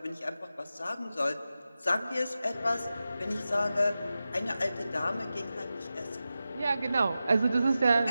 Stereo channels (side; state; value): both; inverted; correlation -0.93